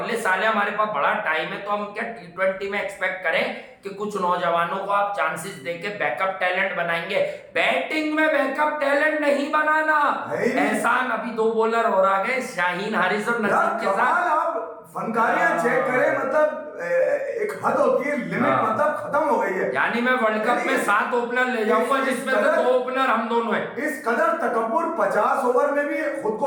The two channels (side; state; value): both; identical; correlation 1.00